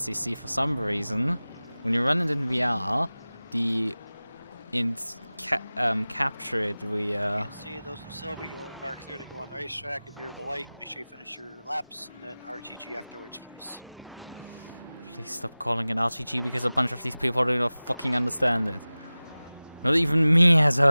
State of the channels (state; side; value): inverted; both; correlation -0.98